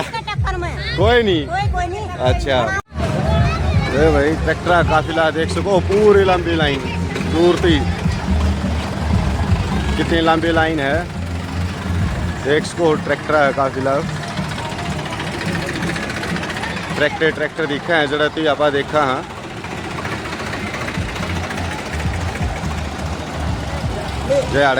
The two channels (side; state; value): both; identical; correlation 1.00